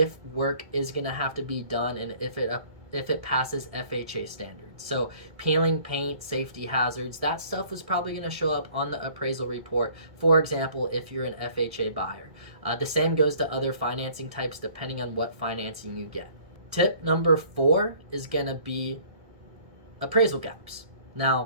work is going to have to be done and if it it passes FHA standards. So peeling paint, safety hazards, that stuff is probably going to show up on the appraisal report, for example, if you're an FHA buyer. The same goes to other financing types depending on what financing you get. Tip number 4 is going to be appraisal gaps.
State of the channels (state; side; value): late; left; 1.7 ms